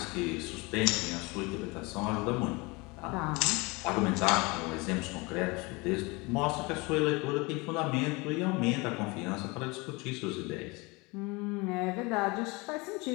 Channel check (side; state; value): right; quieter; 25.9 dB